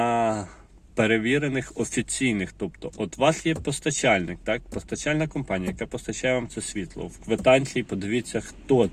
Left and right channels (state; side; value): identical; both; correlation 1.00